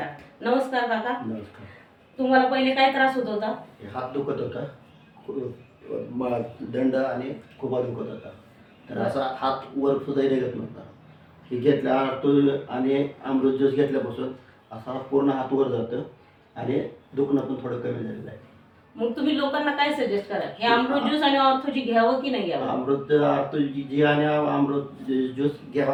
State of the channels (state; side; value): identical; both; correlation 1.00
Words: नमस्कार काका। नमस्कार। तुम्हाला पहिले काय त्रास होत होता? हात दुखत होता, दंड आणि खूप दुखत होता, तर असा हात वर सुद्धा निघत नव्हता। हे घेतल्या आणि अमृत ज्यूस घेतल्यापासून असा पूर्ण हात वर जातं आणि दुखणं पण थोडं कमी झालेलं आहे। मग तुम्ही लोकांना काय सजेस्ट करा, हे अमृत ज्यूस आणि ऑर्थोजी घ्यावं की नाही घ्यावं? ऑर्थोजी आणि अमृत ज्यूस